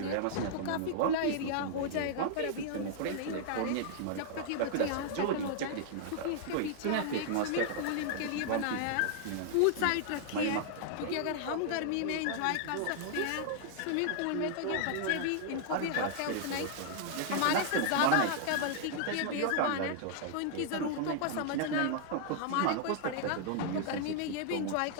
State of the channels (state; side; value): different; both; correlation -0.01